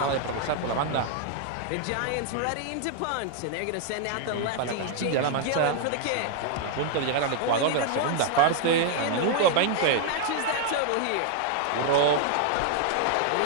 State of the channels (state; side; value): different; both; correlation 0.00